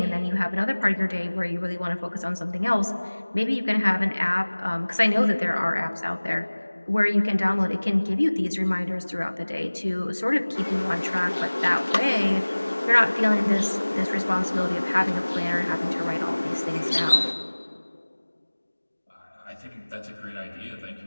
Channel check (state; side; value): inverted; both; correlation -1.00